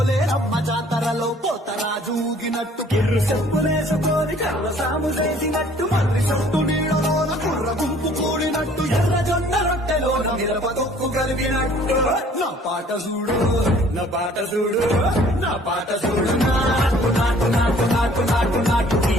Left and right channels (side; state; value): both; normal; correlation 0.55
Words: జాతరలో పోతరాజు ఊగినట్టు కిర్రు చెప్పులేసుకొని కర్ర సాము చేసినట్టు మర్రి చుట్టూ నీడలోన కుర్ర గుంపు కూడినట్టు ఎర్ర జొన్న రొట్టెలోన మిరప తొక్కు కలిగినట్టు నా పాట చూడు నా పాట చూడు నా పాట చూడు నాటు నాటు నాటు నాటు నాటు నాటు